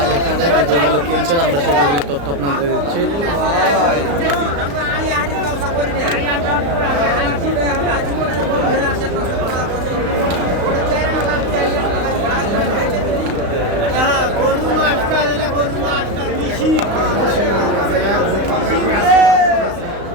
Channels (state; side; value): late; left; 35 ms